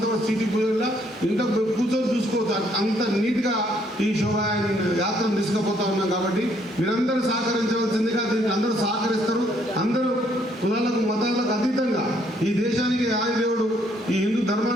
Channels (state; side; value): normal; both; correlation 0.68